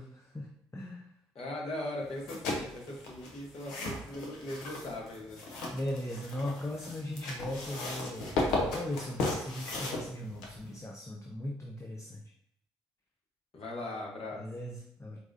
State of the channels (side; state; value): both; normal; correlation 0.66